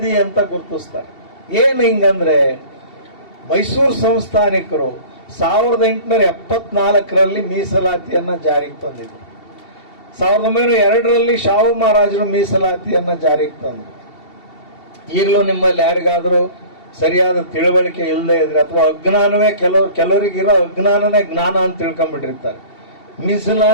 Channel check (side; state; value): right; late; 2.7 ms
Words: ಅಂತ ಗುರುತಿಸ್ತಾರೆ. ಏನು ಹಿಂಗಂದ್ರೆ, ಮೈಸೂರು ಸಂಸ್ಥಾನಿಕರು 1874ರಲ್ಲಿ ಮೀಸಲಾತಿಯನ್ನ ಜಾರಿಗೆ ತಂದಿದ್ರು. 1902ರಲ್ಲಿ ಶಾಹು ಮಹಾರಾಜರು ಮೀಸಲಾತಿಯನ್ನ ಜಾರಿಗೆ ತಂದರು. ಈಗಲೂ ನಿಮ್ಮಲ್ಲಿ ಯಾರಿಗಾದ್ರೂ ಸರಿಯಾದ ತಿಳುವಳಿಕೆ ಇಲ್ಲದೆ ಇದ್ರೆ ಅಥವಾ ಅಜ್ಞಾನವೇ ಕೆಲವರಿಗಿರೋ ಅಜ್ಞಾನನೇ ಜ್ಞಾನ ಅಂತ ತಿಳ್ಕೊಂಡ್ಬಿಟ್ಟಿರ್ತಾರೆ.